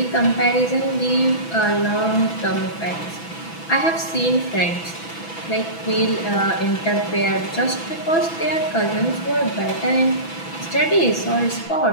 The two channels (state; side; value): late; right; 6.0 ms